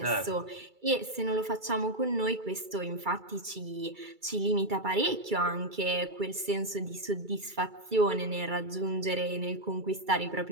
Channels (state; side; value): late; left; 2.3 ms